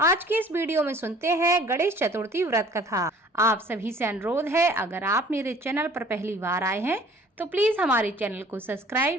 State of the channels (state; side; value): normal; both; correlation 0.52